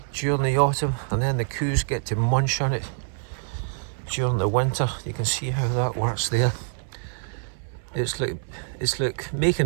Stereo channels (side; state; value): left; silent; 61 dB below the other